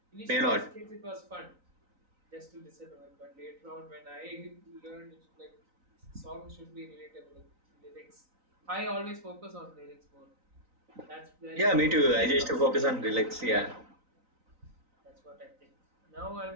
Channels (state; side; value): late; left; 3.9 ms